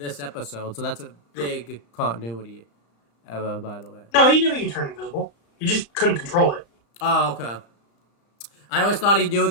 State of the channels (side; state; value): right; late; 35 ms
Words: episode. So that's a big continuity, by the way. No, he knew he could turn invisible. He just couldn't control it. Oh, okay. I always thought he